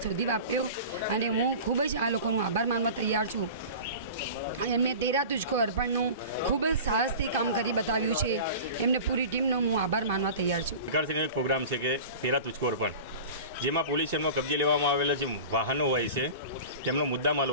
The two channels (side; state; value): both; inverted; correlation -0.36